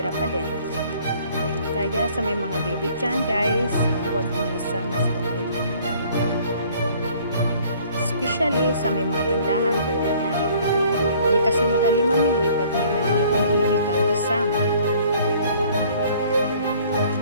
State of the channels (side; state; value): both; inverted; correlation -0.56